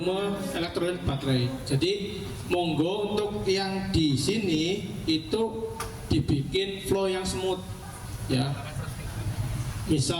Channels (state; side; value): identical; both; correlation 1.00